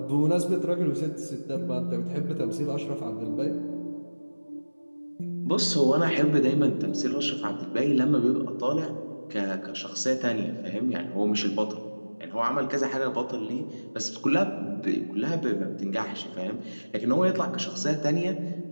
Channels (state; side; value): inverted; both; correlation -1.00